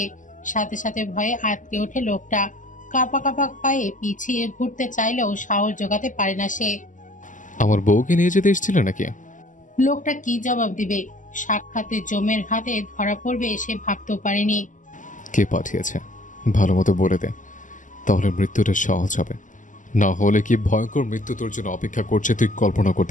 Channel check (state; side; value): late; right; 0.37 ms